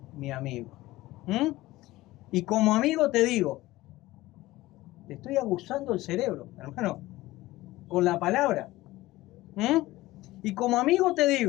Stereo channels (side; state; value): right; quieter; 17.9 dB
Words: mi amigo. Y como amigo te digo, te estoy aguzando el cerebro, hermano, con la palabra. Y como amigo te